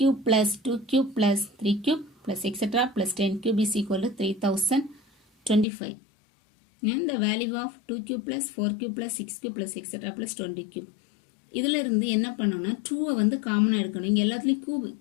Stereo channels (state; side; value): drops out; right; at 5.7 s